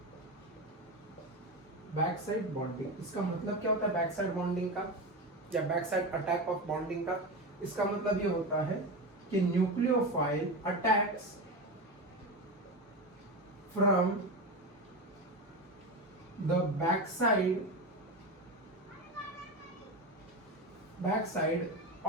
Back side bonding, इसका मतलब क्या होता है बैक साइड बॉन्डिंग का, या back side attack of bonding का। इसका मतलब ये होता है कि nucleophile attacks from the back side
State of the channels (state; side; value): normal; both; correlation 0.19